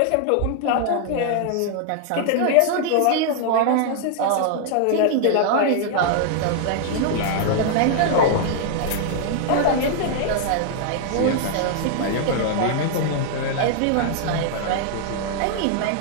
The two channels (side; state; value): both; different; correlation 0.00